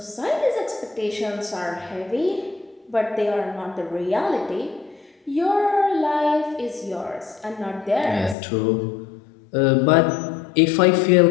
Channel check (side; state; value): right; drops out; at 8.3 s